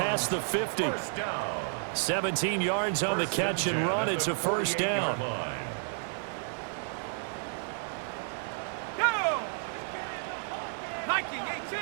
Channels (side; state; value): left; silent; 57 dB below the other